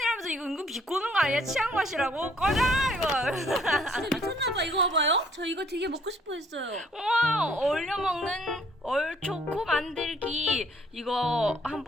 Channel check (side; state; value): both; normal; correlation 0.63